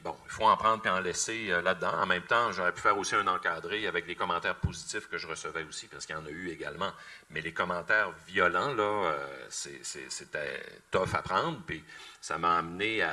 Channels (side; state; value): both; identical; correlation 1.00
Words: bon, il faut en prendre et en laisser là-dedans. En même temps, j'aurais pu faire aussi un encadré avec les commentaires positifs que je recevais aussi, parce qu'il y en a eu également. Mais les commentaires violents, là, c'était tough à prendre. Puis ça m'a amené